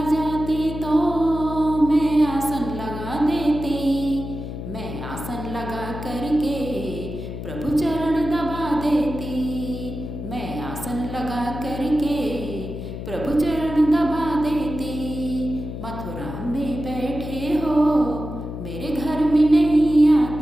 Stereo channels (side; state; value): left; noise; hum, 8 dB below the sound